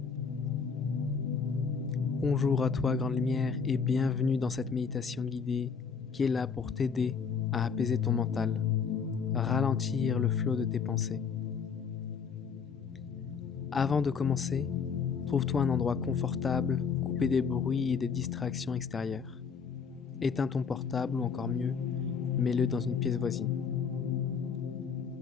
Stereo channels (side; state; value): right; quieter; 5.9 dB